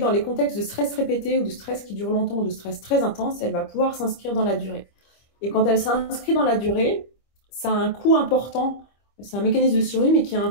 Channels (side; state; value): right; late; 25 ms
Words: les contextes de stress répété ou de stress qui dure longtemps ou de stress très intense, elle va pouvoir s'inscrire dans la durée. Et quand elle s'inscrit dans la durée, ça a un coût important. C'est un mécanisme de survie, mais qui a